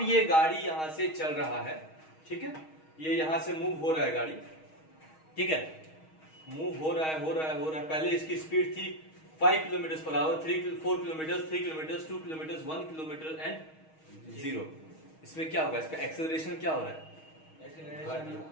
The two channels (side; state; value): right; late; 6.4 ms